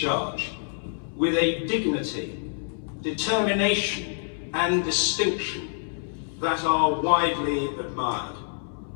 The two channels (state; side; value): silent; right; 60 dB below the other